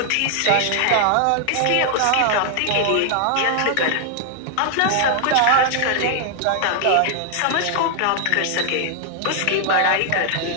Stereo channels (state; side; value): different; both; correlation 0.00